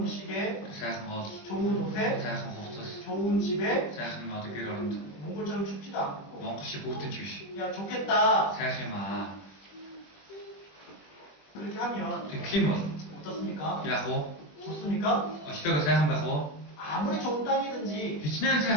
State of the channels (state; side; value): late; right; 21 ms